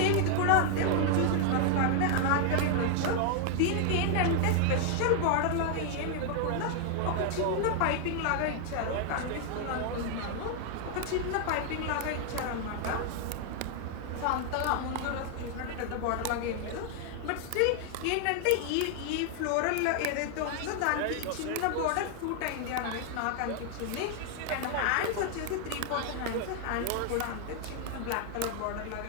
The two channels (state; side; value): different; both; correlation 0.00